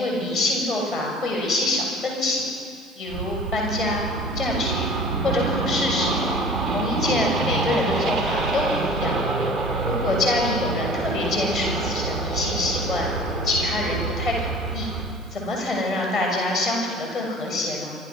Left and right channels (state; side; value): noise; right; hiss, 30 dB below the sound